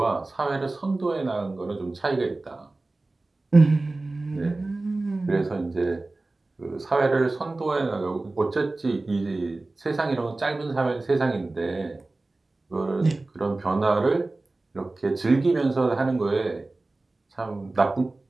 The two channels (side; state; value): left; quieter; 3.1 dB